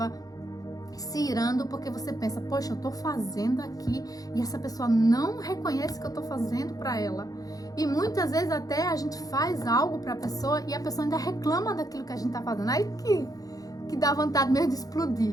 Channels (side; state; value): right; late; 0.18 ms